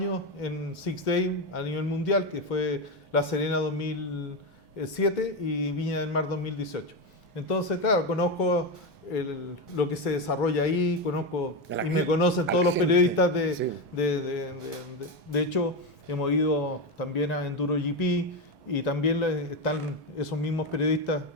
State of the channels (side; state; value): both; normal; correlation 0.12